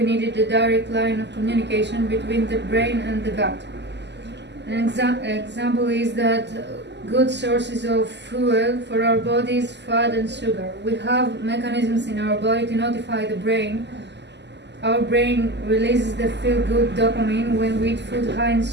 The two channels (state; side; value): late; left; 0.50 ms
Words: needed a direct line of communication between the brain and the gut. An example is that good sources of fuel for our body is fat and sugar. We have mechanisms in our body to notify the brain. Our brain releases the feel-good dopamine when we eat food high in